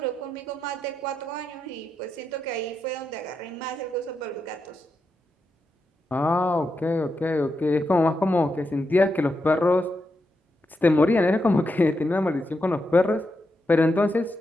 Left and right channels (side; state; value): both; normal; correlation 0.85